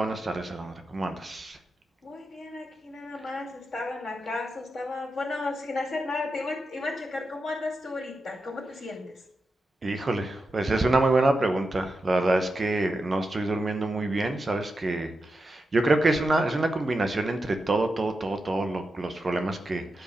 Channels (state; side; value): normal; both; correlation 0.89